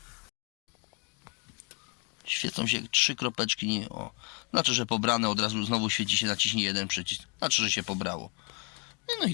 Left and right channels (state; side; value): quieter; right; 34.5 dB